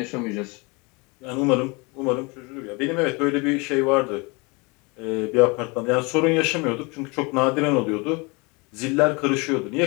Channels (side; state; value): right; quieter; 28.3 dB